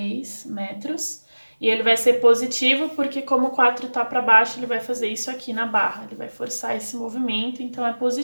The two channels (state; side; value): inverted; both; correlation -1.00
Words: metros. E ele vai ser positivo porque como o 4 tá para baixo, ele vai fazer isso aqui na barra. Ele vai forçar esse movimento, então é